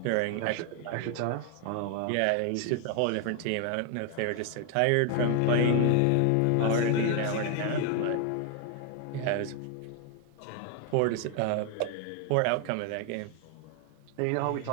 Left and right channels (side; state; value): both; different; correlation 0.00